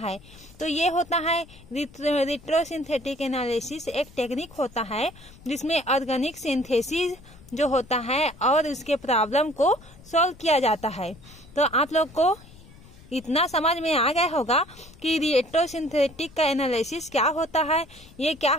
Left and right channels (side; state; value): left; noise; rumble, 22 dB below the sound